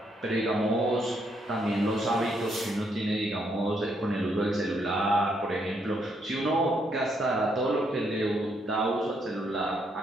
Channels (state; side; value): normal; both; correlation 0.74